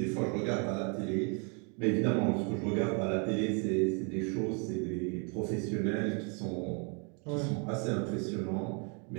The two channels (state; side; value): quieter; left; 36.5 dB